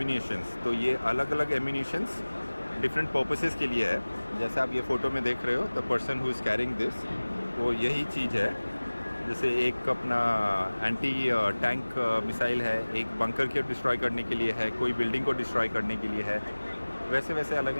तो ये अलग अलग एम्यूनिशंस डिफरेंट पर्पसेस के लिए है। जैसे आप ये फ़ोटो में देख रहे हो, the person who is carrying this, वो यही चीज़ है। जैसे एक अपना एंटी टैंक मिसाइल है, एक बंकर को डिस्ट्रॉय करने के लिए है, कोई बिल्डिंग को डिस्ट्रॉय करने के लिए है, वैसे वैसे अलग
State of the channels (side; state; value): both; inverted; correlation -1.00